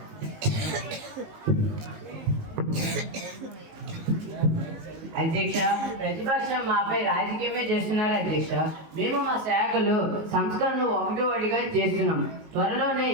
అధ్యక్ష, ప్రతిపక్షం మాపై రాజకీయమే చేస్తున్నారు అధ్యక్ష. మేము మా శాఖలో సంస్కరణలు ఒకటిగా చేస్తున్నాం. త్వరలోనే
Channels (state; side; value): late; left; 19 ms